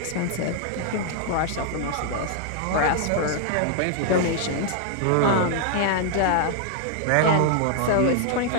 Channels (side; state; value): both; different; correlation -0.01